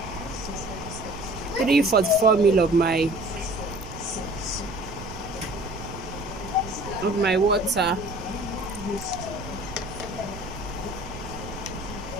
344 ml of my water.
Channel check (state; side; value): noise; right; rumble, 11 dB below the sound